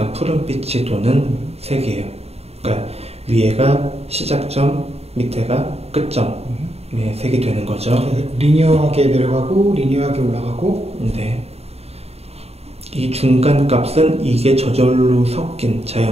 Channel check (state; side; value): late; left; 0.30 ms